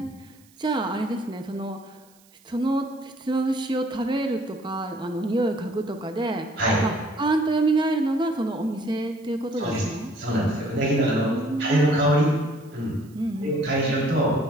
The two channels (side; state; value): right; noise; hiss, 29 dB below the sound